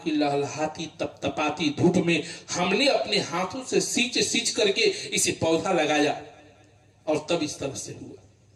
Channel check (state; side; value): identical; both; correlation 1.00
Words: की लहलहाती तपतपाती धूप में हमने अपने हाथों से सींच सींच करके इसे पौधा लगाया और तब इस तरह से हुआ।